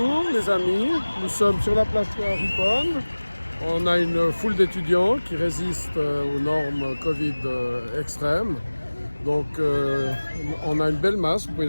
les amis, nous sommes sur la place Ripon. On a une foule d'étudiants qui résistent aux normes Covid extrêmes. Donc on a une belle masse, vous pouvez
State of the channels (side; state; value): both; inverted; correlation -1.00